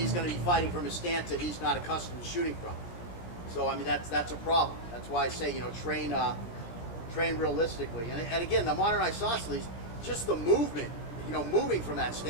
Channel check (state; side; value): late; right; 17 ms